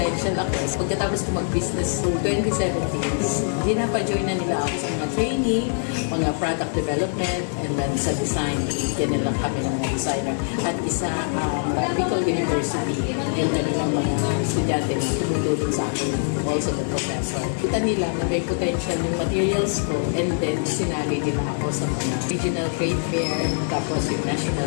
ako. Pagkatapos ko mag-business so 2017, dinapa-join na nila ako sa mga training, mga product development, and then sa design, yan na lang kami ng mga designer. At isa Bicol University, yung kanilang mga estudyante na tumutulong sa akin, also the professor. Kita nila na may potential yung materials ko, and then sinali nila ako sa mga regional trade fair, tapos yung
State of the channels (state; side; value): silent; right; 61 dB below the other